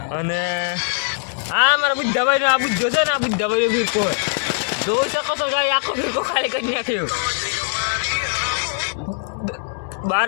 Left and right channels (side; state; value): right; silent; digital silence